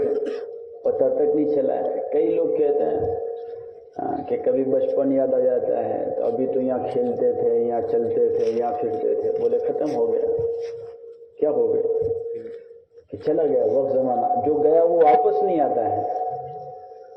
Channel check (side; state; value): both; identical; correlation 1.00